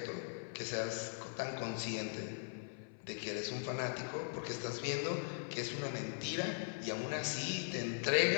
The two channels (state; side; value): silent; right; 51 dB below the other